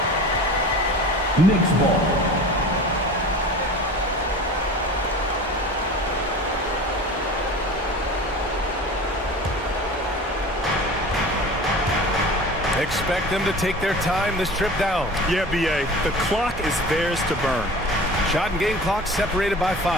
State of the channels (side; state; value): both; normal; correlation 0.38